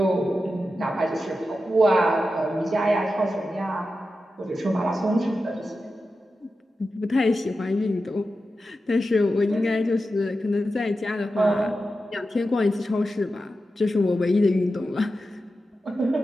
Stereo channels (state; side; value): normal; both; correlation 0.91